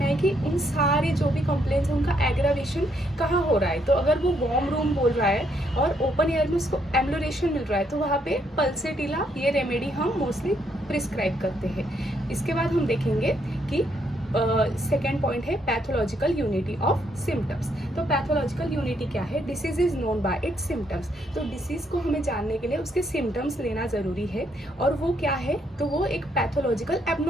है कि उन सारे जो भी कंप्लेंट्स हैं उनका एग्रावेशन कहाँ हो रहा है. तो अगर वो वार्म रूम बोल रहा है और ओपन एयर में उसको एमिलोरेशन मिल रहा है तो वहाँ पे पल्सेटिला ये रेमेडी हम मोस्टली प्रिस्क्राइब करते हैं. इसके बाद हम देखेंगे कि सेकेंड पॉइंट है पैथोलॉजिकल यूनिटी ऑफ सिम्टम्स. तो पैथोलॉजिकल यूनिटी क्या है? Disease is known by it's symptoms. तो डिसीज को हमें जानने के लिए उसके सिम्टम्स लेना ज़रूरी है. और वो क्या है? तो वो एक पैथोलॉजिकल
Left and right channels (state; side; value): normal; both; correlation 0.73